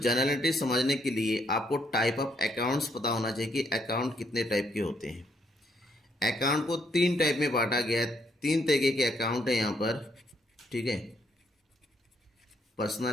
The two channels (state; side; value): normal; both; correlation 0.73